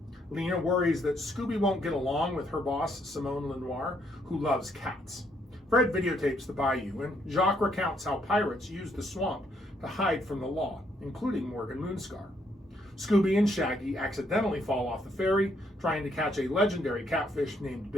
Lena worries that Scooby won't get along with her boss, Simone Lenoir, who loves cats. Fred videotapes the bayou, and Jacques recounts how pirates used the swamp to hide from the law, including Morgan Moonscar. Scooby and Shaggy accidentally fall off the ferry, trying to catch a legendary catfish named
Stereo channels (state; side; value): normal; both; correlation 0.72